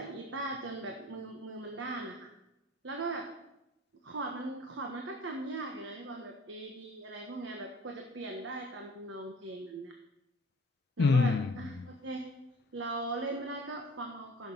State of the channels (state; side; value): normal; both; correlation 0.49